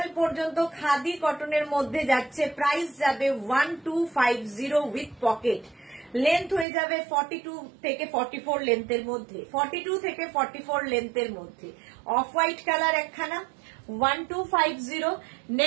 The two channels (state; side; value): drops out; left; at 6.7 s